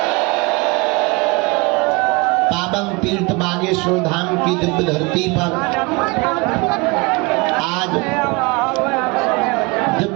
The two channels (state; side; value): quieter; left; 27.0 dB